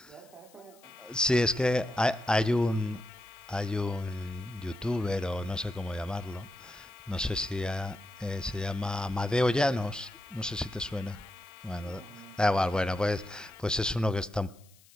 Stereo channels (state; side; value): noise; left; hiss, 27 dB below the sound